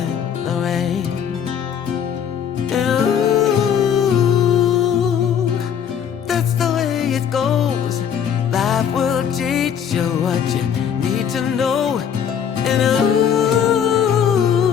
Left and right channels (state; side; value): quieter; right; 8.3 dB